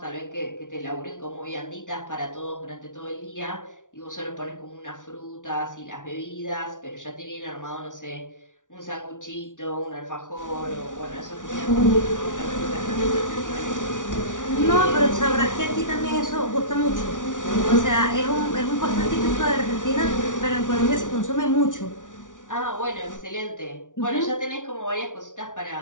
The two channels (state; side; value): late; right; 0.87 ms